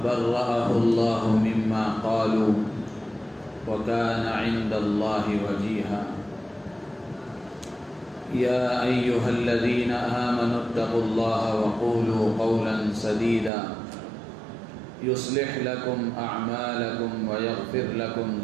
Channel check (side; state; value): left; drops out; at 13.5 s